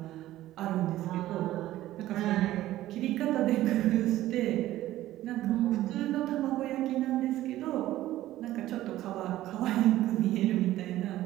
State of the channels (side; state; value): left; quieter; 14.7 dB